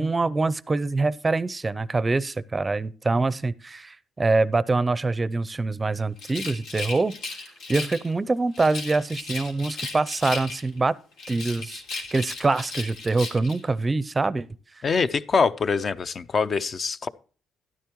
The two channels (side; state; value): both; normal; correlation 0.92